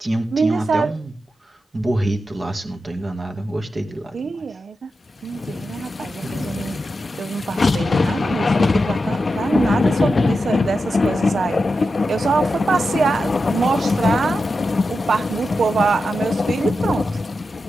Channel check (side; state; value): both; normal; correlation 0.89